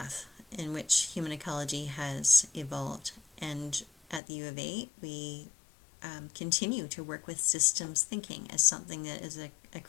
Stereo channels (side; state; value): right; drops out; at 4.2 s